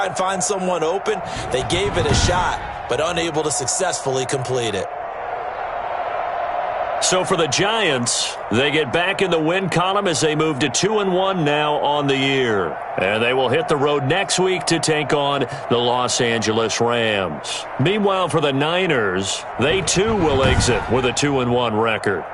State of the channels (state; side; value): identical; both; correlation 1.00